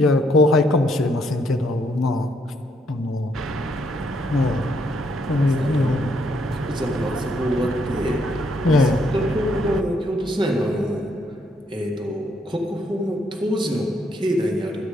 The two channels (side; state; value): both; normal; correlation 0.72